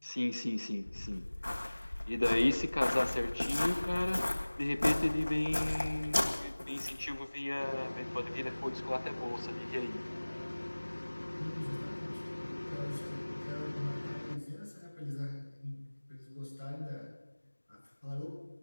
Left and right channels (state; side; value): inverted; both; correlation -1.00